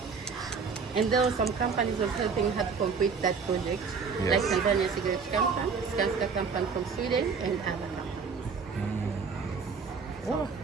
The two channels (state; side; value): quieter; left; 5.4 dB